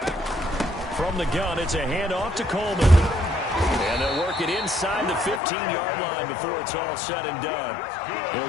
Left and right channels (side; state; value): right; drops out; at 5.4 s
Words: From the gun, it's a handoff to Coleman. And they'll work it inside the 15-yard line before it's all said and done. They'll